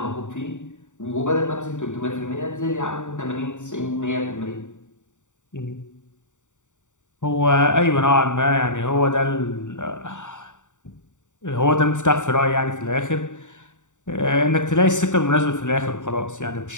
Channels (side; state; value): right; late; 0.86 ms